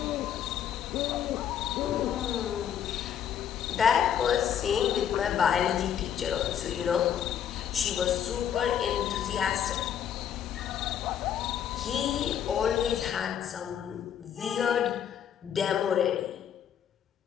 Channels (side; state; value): right; quieter; 9.1 dB